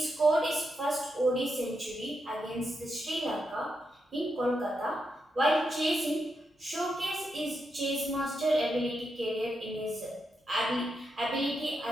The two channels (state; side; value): normal; both; correlation 0.84